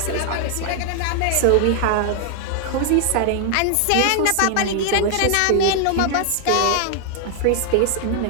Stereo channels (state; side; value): different; both; correlation 0.00